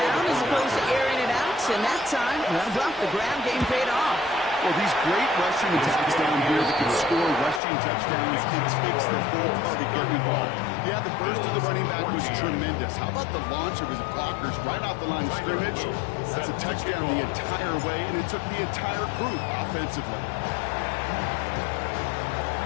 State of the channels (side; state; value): right; drops out; at 7.6 s